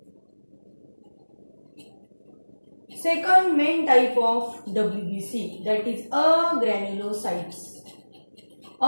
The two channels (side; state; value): both; inverted; correlation -1.00